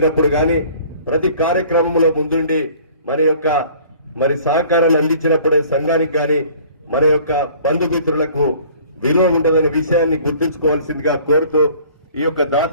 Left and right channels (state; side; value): inverted; both; correlation -0.51